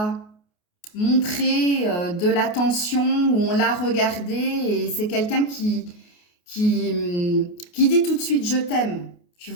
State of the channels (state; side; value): late; right; 28 ms